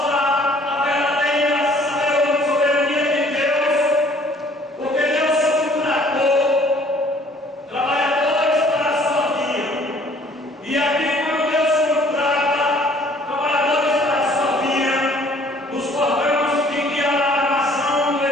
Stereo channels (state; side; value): normal; both; correlation 0.57